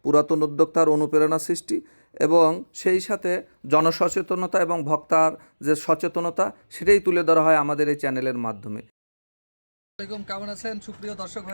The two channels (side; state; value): both; inverted; correlation -1.00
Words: পুরাতন উদ্যোক্তার অনুপ্রেরণা সৃষ্টি এবং সেই সাথে জনসচেতনতা এবং ভোক্তার যে সচেতনতা সেটাই তুলে ধরা হয় আমাদের এই চ্যানেলের মাধ্যমে। আসসালামাইকুম, কেমন আছেন সুপ্রিয় দর্শক